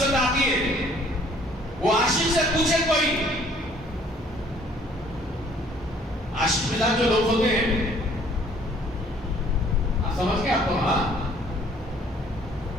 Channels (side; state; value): both; normal; correlation 0.58